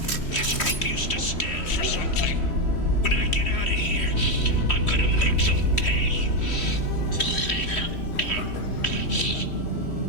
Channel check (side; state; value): right; late; 3.1 ms